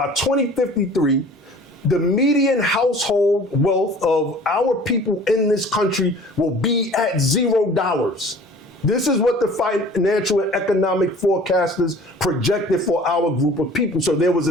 2053, the median household wealth of our people in this country will be at $0. This is what the financial and economic forecasters projected for our group of people. So there was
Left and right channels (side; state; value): both; normal; correlation 0.47